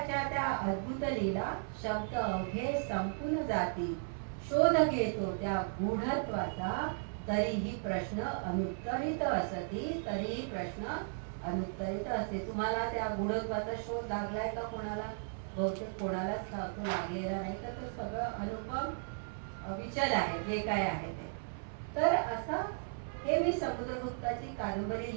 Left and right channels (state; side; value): silent; left; 54 dB below the other